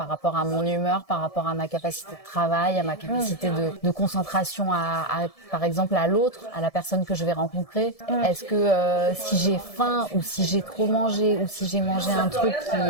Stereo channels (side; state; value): right; late; 1.7 ms